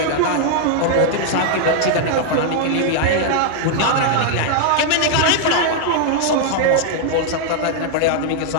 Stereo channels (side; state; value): both; different; correlation 0.00